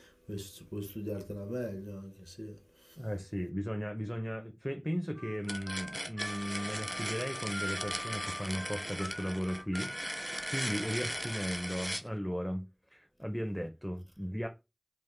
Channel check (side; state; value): both; identical; correlation 1.00